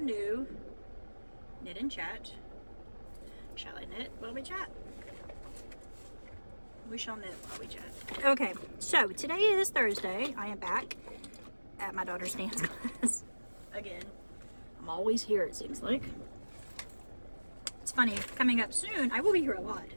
new knit and chat. Shall I knit while we chat? We shall knit while we chat. Okay, so today is Thursday. I am back at my daughter's dance class. Again, I'm always here, it seems like. It's funny, coming up soon, I will be here a lot.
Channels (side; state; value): both; inverted; correlation -1.00